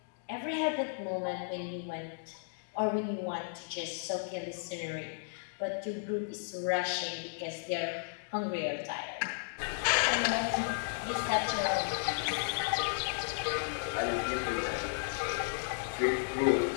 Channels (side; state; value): right; silent; digital silence